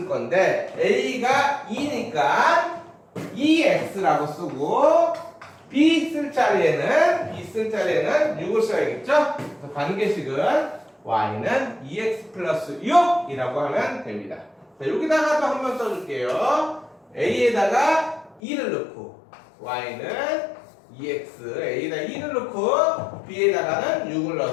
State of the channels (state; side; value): drops out; right; at 18.4 s